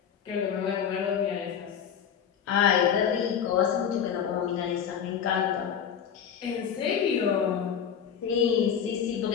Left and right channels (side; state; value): right; quieter; 8.1 dB